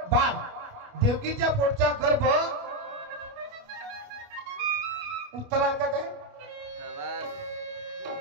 बाळ देवकीच्या पोटचा गर्भ उत्तरार्ध काय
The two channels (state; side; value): late; left; 28 ms